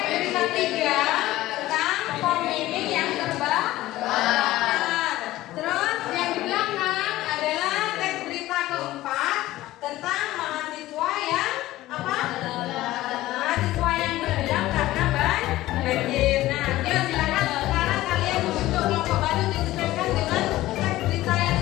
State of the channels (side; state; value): right; quieter; 16.3 dB